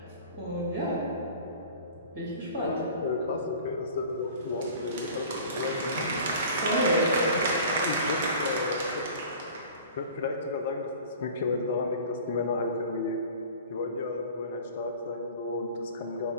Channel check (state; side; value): inverted; both; correlation -0.42